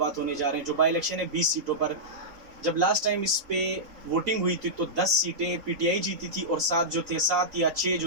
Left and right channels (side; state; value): left; late; 3.8 ms